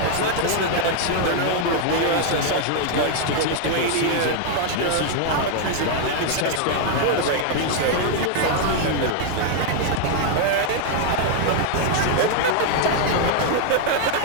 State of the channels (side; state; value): both; different; correlation 0.00